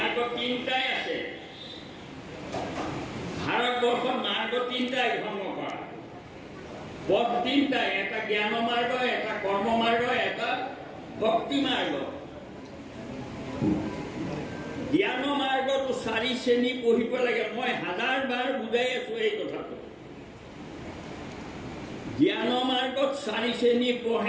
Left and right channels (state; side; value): identical; both; correlation 1.00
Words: তিনিটাই আছে। ভাৰতবৰ্ষত মাৰ্গ তিনিটাই ধৰ্ম কৰা, পথ তিনিটাই, এটা জ্ঞান মাৰ্গ, এটা কৰ্ম মাৰ্গ, এটা ভক্তি মাৰ্গ। জ্ঞান মাৰ্গটো 4 শ্ৰেণী পঢ়িব লাগে। মই 1000 বাৰ বুজাই আছো এই কথাটো। জ্ঞান মাৰ্গত 4 শ্ৰেণী